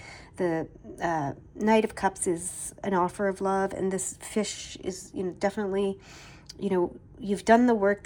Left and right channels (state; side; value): identical; both; correlation 1.00